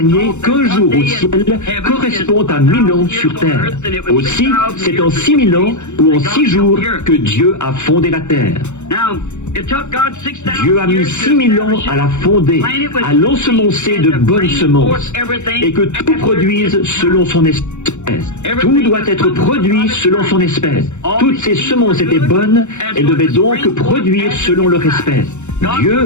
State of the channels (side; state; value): right; late; 0.83 ms